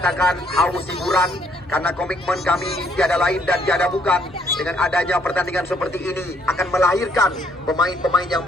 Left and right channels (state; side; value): normal; both; correlation 0.67